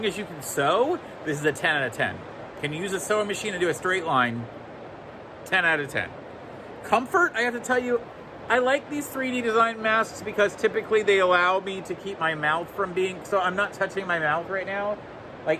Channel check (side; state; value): both; identical; correlation 1.00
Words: as you can sew, this is a 10 out of 10. Can you use a sewing machine and do a straight line? 10 out of 10. Comfort, I have to tell you, I like these 3D design masks because typically they allow me to keep my mouth from being, so I'm not touching my mouth right now.